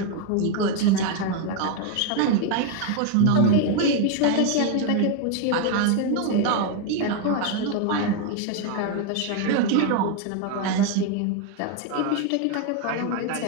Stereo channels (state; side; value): different; both; correlation 0.01